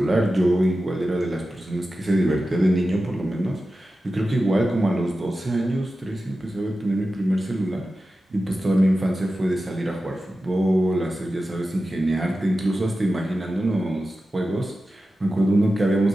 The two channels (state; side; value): normal; both; correlation 0.93